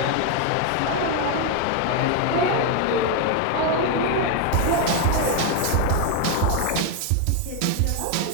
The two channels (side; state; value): both; different; correlation 0.01